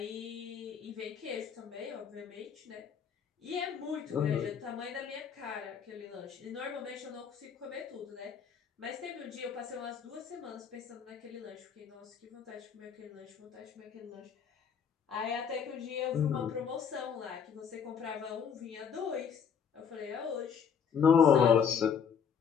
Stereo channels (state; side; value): quieter; right; 7.1 dB